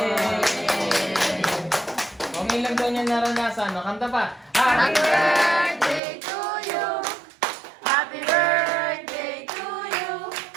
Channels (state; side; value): drops out; left; at 6.0 s